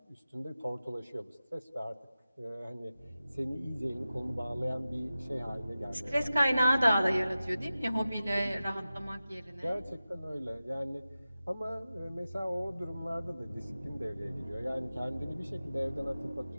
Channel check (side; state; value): both; inverted; correlation -0.95